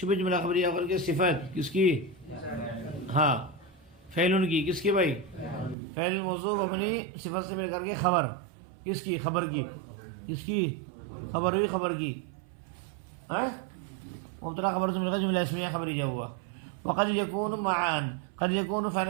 جملہ خبریہ کر کے صفت کس کی، ہاں فعل کی، کس کی بھائی فعل موصوف اپنی صفت سے مل کر کے خبر کس کی، خبر کی، کس کی خبر ہوئی، خبر کی مبتدا خبر سے مل کر جملہ اسمیہ خبریہ ہوا. وقد یکون معان، قد یکون فعل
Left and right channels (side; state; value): left; drops out; at 5.8 s